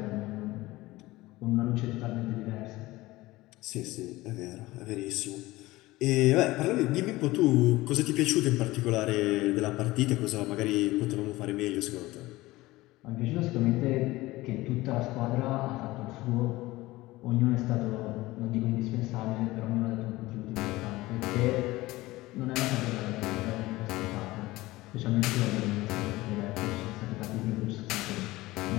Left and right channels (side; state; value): right; quieter; 19.0 dB